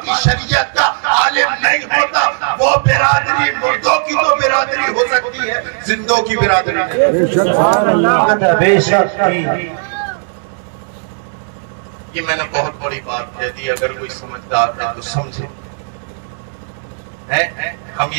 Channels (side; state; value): left; silent; 70 dB below the other